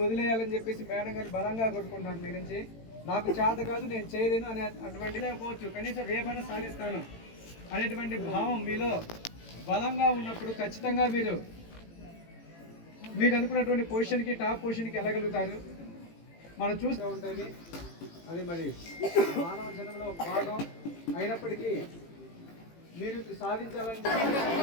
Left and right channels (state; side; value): late; right; 18 ms